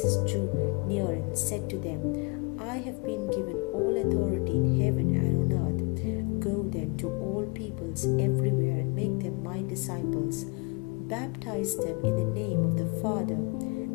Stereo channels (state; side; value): quieter; right; 31.0 dB